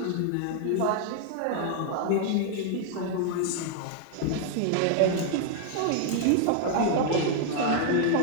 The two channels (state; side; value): different; both; correlation 0.00